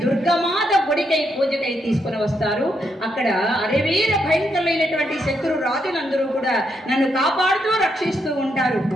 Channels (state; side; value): normal; both; correlation 0.79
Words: దుర్గమాత గుడికై పూజకై తీసుకుని వస్తారు. అక్కడ అరవీర భయంకరమైనటువంటి శత్రు రాజులందరూ కూడా నన్ను కాపాడుతూ రక్షిస్తూ ఉంటారు.